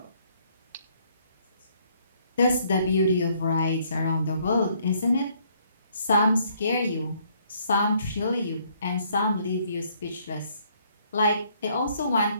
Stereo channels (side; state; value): both; inverted; correlation -0.66